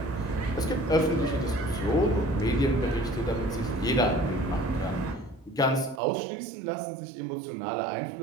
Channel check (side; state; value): left; drops out; at 6.0 s